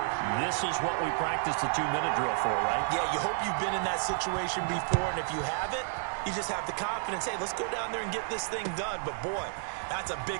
this is what we practiced the 2-minute drill for, right? Yeah, you hope you've been in that situation before, and if you haven't, you just have the confidence, hey, let's go down there and get this thing done. But, boy, that's a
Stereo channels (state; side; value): silent; left; 57 dB below the other